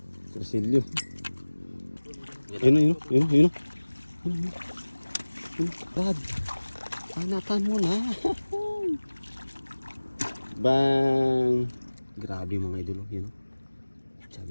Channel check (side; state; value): both; inverted; correlation -1.00